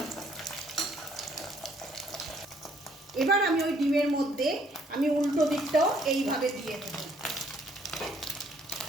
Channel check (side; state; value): both; normal; correlation 0.65